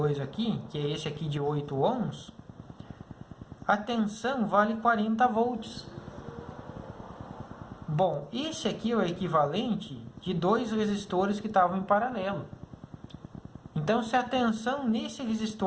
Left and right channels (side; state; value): both; identical; correlation 1.00